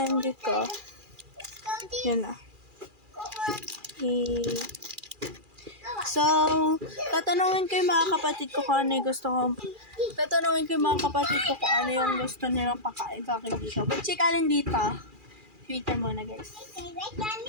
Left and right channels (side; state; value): left; late; 2.4 ms